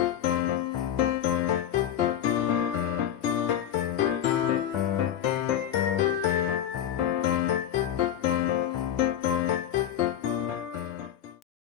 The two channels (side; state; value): right; quieter; 10.4 dB